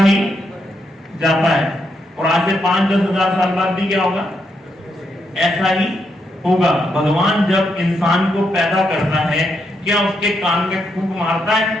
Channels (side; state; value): both; normal; correlation 0.79